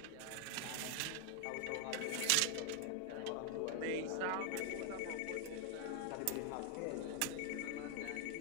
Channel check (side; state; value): both; different; correlation 0.00